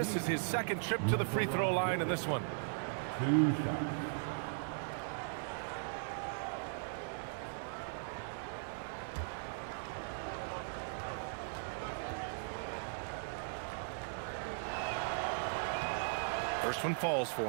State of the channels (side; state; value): left; silent; digital silence